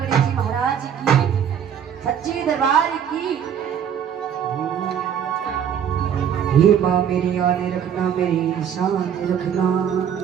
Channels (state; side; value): quieter; left; 8.6 dB